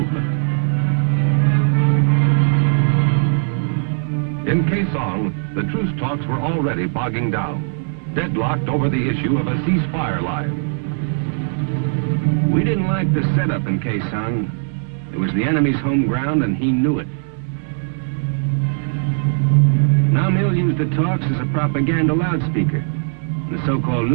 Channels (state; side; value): silent; left; 65 dB below the other